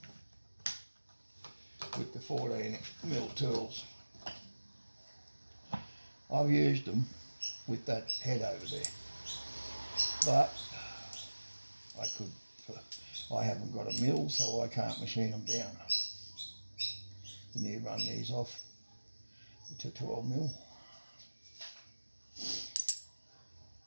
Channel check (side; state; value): both; inverted; correlation -1.00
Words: With the 14mm tools. I've used them with that head over there. But I haven't got a mill, so I can't machine them down. And you run these off to 12mm.